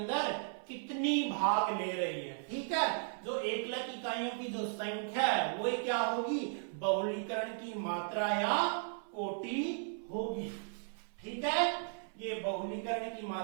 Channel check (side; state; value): left; silent; 54 dB below the other